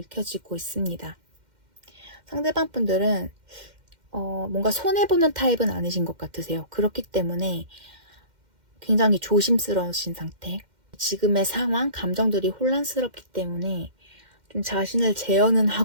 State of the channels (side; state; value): left; late; 2.1 ms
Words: 있습니다. 상대방 분들은 뭔가 손해보는 타입은 아니신 것 같으세요. 그렇기 때문에 굉장히 조심스러우신 상태. 지금의 상황, 감정들이 혼란스럽기 때문에 좀 자신을 제어는